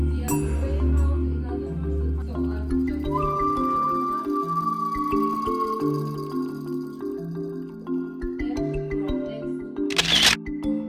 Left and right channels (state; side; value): identical; both; correlation 1.00